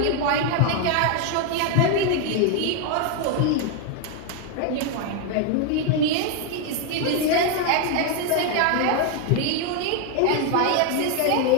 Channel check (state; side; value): different; both; correlation 0.01